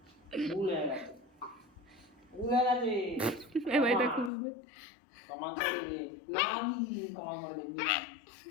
এবার এটা খুলবে।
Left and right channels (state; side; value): drops out; right; at 4.3 s